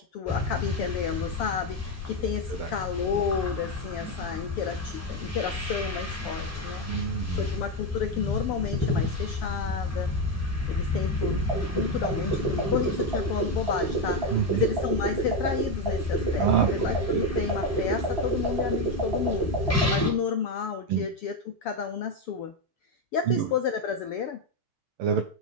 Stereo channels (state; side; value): normal; both; correlation 0.08